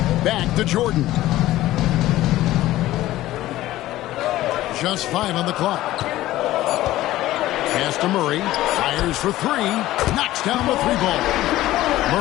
Back to Jordan. Just 5 on the clock. Pass to Murray. Fires for 3. Knocks down the 3-ball.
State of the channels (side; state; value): right; quieter; 15.5 dB